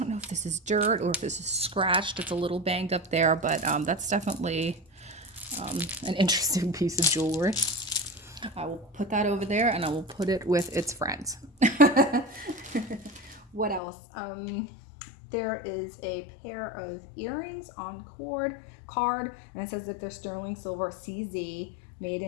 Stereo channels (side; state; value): right; drops out; at 13.8 s